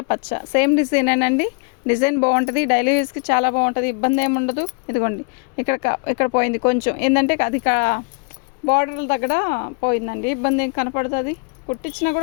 పచ్చ. సేమ్ డిజైనేనండి, డిజైన్ బాగుంటుంది. డైలీ యూస్కి చాలా బాగుంటుంది, ఇబ్బంది ఏమి ఉండదు. ఇదిగోండి ఇక్కడ పోయింది కొంచెం, ఏంటంటే అది బార్డర్ల దగ్గర పోయిందండి. ఇబ్బంది ఏం కనపడుతుంది, కుట్టించినా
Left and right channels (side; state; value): right; quieter; 34.5 dB